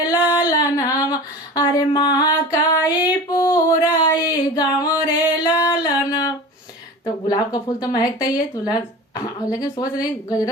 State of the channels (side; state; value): both; normal; correlation 0.35